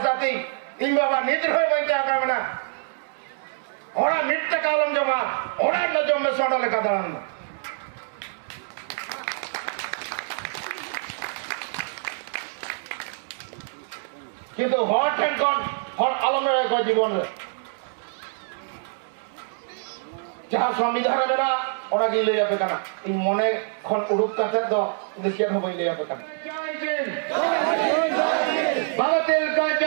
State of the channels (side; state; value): left; silent; 62 dB below the other